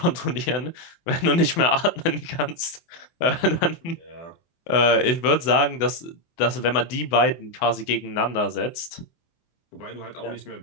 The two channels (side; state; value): right; late; 24 ms